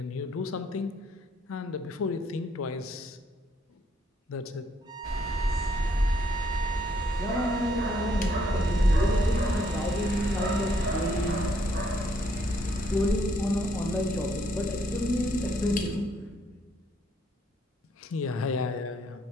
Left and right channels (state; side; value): normal; both; correlation 0.70